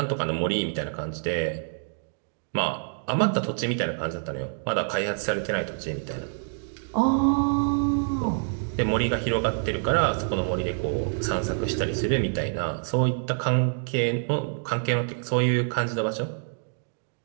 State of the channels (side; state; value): left; silent; digital silence